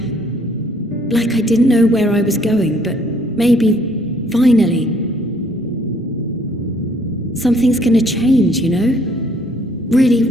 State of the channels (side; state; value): both; normal; correlation 0.63